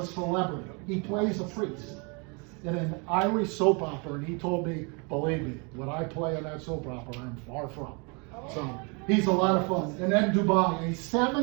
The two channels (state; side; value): quieter; left; 32.8 dB